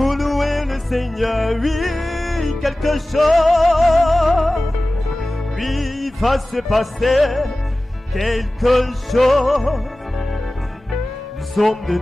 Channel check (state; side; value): normal; both; correlation 0.97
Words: louer le Seigneur, oui, quelque chose. Oui, va se passer quelque chose. Nous sommes de